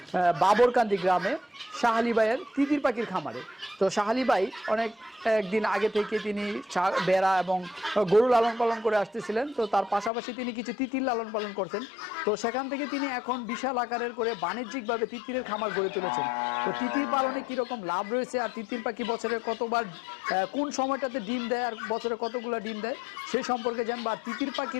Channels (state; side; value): drops out; right; at 10.1 s